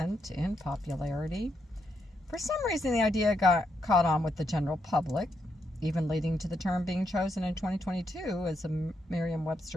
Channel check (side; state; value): both; normal; correlation 0.80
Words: in popularity. For some reason, the idea got caught on with the general public, even leading to the term being chosen in 2022 as a